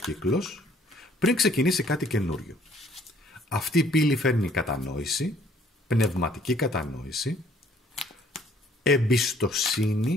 πριν ξεκινήσει κάτι καινούριο. Αυτή η πύλη φέρνει κατανόηση, πνευματική κατανόηση,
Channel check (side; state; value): both; normal; correlation 0.60